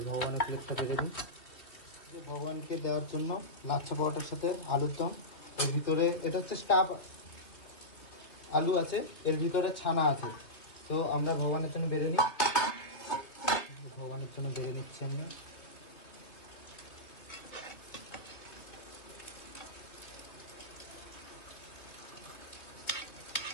ভগবানের প্লেটটা বেড়ে দিই, ভগবানকে দেওয়ার জন্য লাচ্ছা পরোটার সাথে আলুর দম। এর ভিতরে এটা হচ্ছে স্টাফ আলু আছে, এর ভিতরে ছানা আছে। তো আমরা ভগবানের জন্য বেড়ে নিই, ভগবানের জন্য বেড়ে নিচ্ছি আমরা।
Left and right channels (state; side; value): late; right; 2.9 ms